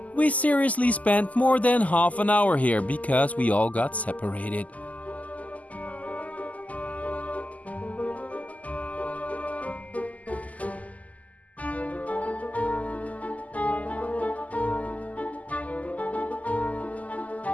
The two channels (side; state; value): right; late; 0.075 ms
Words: We seriously spent more than half an hour here because we all got separated.